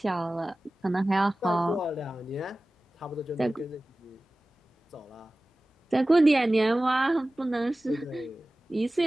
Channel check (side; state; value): both; normal; correlation 0.97